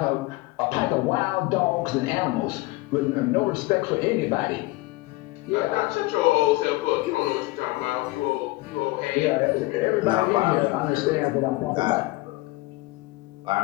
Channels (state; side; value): quieter; right; 20.6 dB